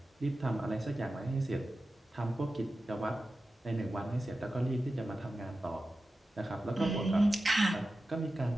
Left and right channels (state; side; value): normal; both; correlation 0.93